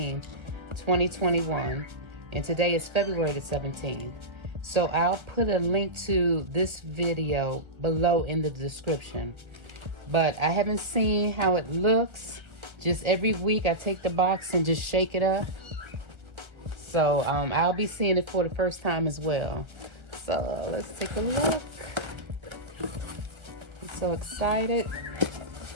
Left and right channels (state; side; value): late; left; 1.4 ms